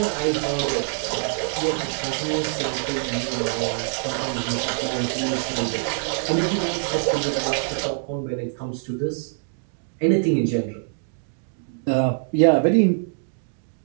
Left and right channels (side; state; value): left; silent; digital silence